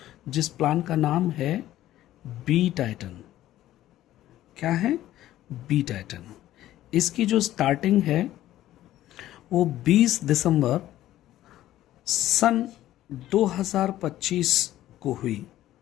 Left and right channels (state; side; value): quieter; right; 13.9 dB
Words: जिस प्लान का नाम है बी टाइटन। क्या है? B Titan. इसकी जो स्टार्टिंग है वो 20 दिसंबर सन 2025 को हुई।